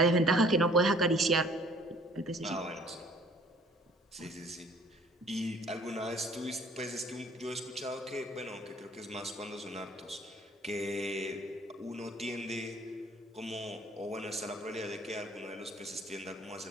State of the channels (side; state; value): both; normal; correlation 0.55